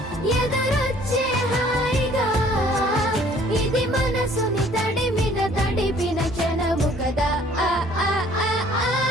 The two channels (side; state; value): both; normal; correlation 0.57